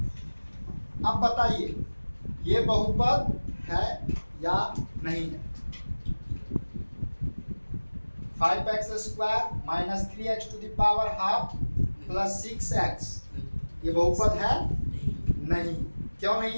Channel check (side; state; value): both; inverted; correlation -1.00